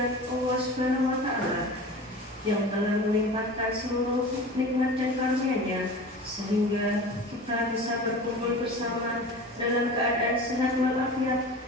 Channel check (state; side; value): normal; both; correlation 0.35